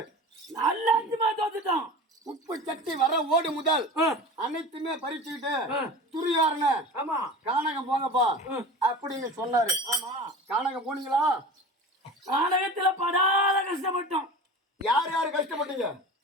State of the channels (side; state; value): both; normal; correlation 0.34